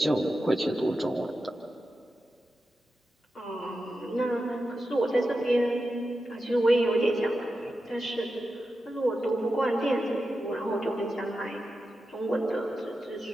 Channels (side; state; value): both; normal; correlation 0.90